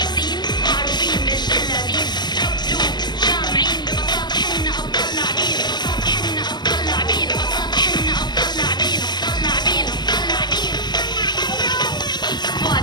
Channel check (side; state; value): right; late; 0.21 ms